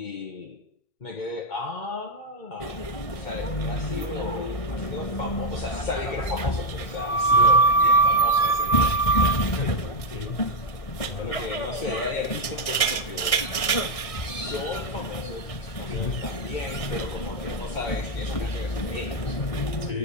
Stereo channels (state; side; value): late; right; 1.6 ms